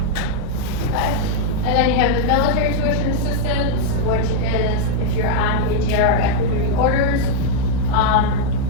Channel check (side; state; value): both; different; correlation -0.01